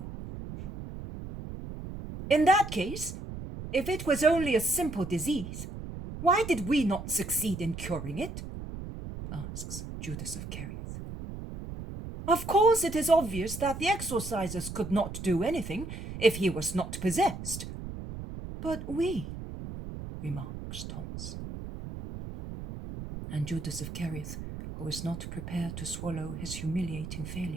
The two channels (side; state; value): right; noise; rumble, 9 dB below the sound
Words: "In that case, if it was only a simple disease, why did we not succeed in curing it?" asks Judas of Kerioth. "Of course it is obvious that the exorcisers could not do anything if he was not possessed. But we," remarks Thomas. And Judas of Kerioth, who was not prepared to swallow his humiliating